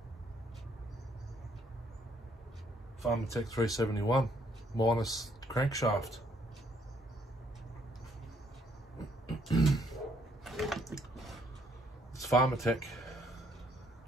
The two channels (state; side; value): normal; both; correlation 0.68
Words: Farmatech 371 minus crankshaft. It's Farmatech.